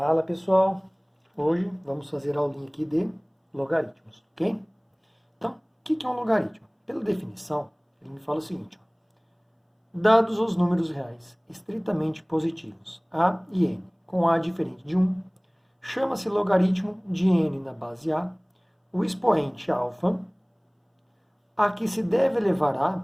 pessoal, hoje vamos fazer a aulinha aqui de logaritmos, ok? Então, o que é um logaritmo? Pela definição, ele me fala o seguinte, ó, dados os números reais estritamente positivos, a e n, com a diferente de 1, chama-se logaritmo de n na base a, o expoente alfa, a que se deve elevar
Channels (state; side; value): identical; both; correlation 1.00